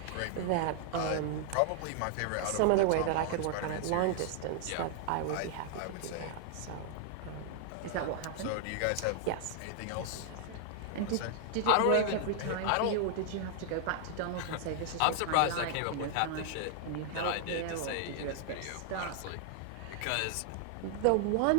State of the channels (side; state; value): both; different; correlation 0.00